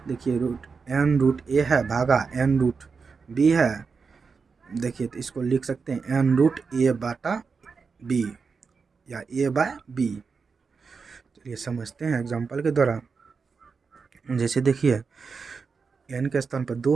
देखिए एन रूट ए है भागा एन रूट बी है, देखिए तो इसको लिख सकते हैं एन रूट ए बटा बी या ए बाय बी। चलिए समझते हैं एग्जाम्पल के द्वारा। जैसे देखिए एन के स्थान पर 2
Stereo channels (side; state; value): left; quieter; 5.1 dB